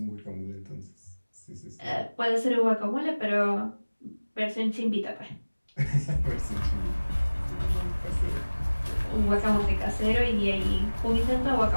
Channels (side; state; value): both; inverted; correlation -1.00